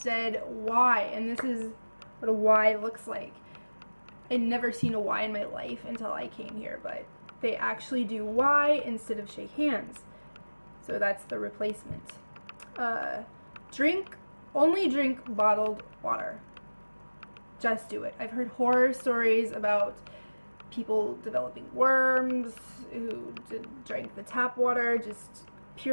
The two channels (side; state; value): both; inverted; correlation -1.00